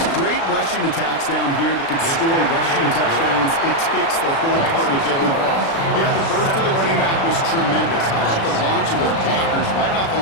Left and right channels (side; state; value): right; late; 36 ms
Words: great rushing attacks down here that can score rushing touchdowns, it takes the whole party getting involved. Yeah, the burst of the running back was tremendous. How about the launch of his blockers right off the